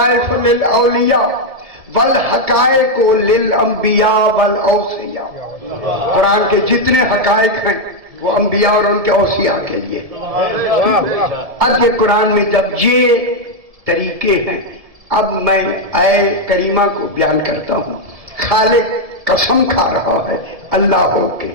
للاولیاء والحقائق للانبیاء والاوصیاء. قرآن کے جتنے حقائق ہیں وہ انبیاء اور ان کے اوصیاء کے لیے. اب یہ قرآن میں جب یہ طریقے ہیں, اب میں اے کریمہ کو بیان کرتا ہوں. خالق قسم کھا رہا ہے اللہ ہو کے,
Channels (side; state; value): left; late; 1.7 ms